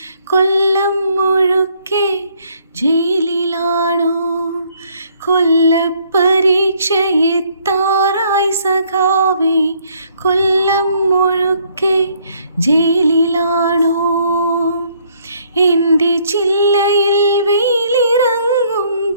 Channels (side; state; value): both; inverted; correlation -0.66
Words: കൊല്ലം മുഴുക്കെ ജയിലിലാണോ? കൊല്ലപ്പരീക്ഷയെത്താറായി സഖാവേ, കൊല്ലം മുഴുക്കെ ജയിലിലാണോ? എൻ്റെ ചില്ലയിൽ വെയിലിറങ്ങുമ്പോൾ